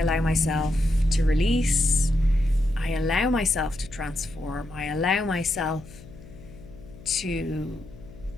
myself to release. I allow myself to transform. I allow myself to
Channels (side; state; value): left; noise; hum, 19 dB below the sound